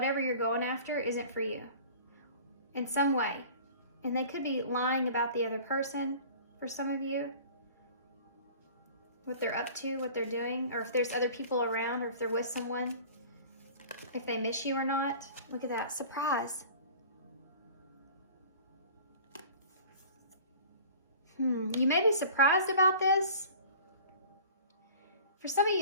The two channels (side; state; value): both; inverted; correlation -0.43